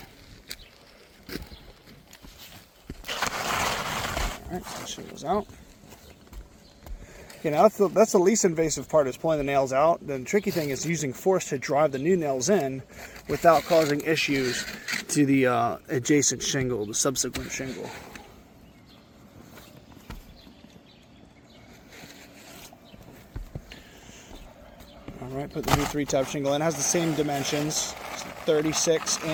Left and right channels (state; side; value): identical; both; correlation 1.00